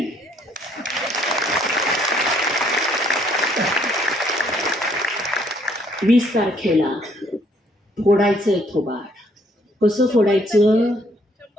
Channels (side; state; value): both; normal; correlation 0.66